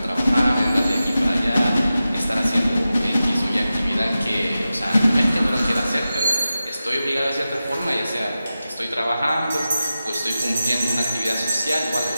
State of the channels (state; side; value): inverted; both; correlation -0.93